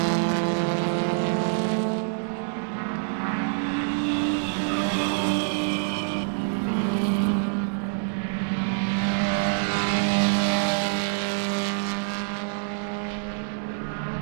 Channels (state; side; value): silent; left; 61 dB below the other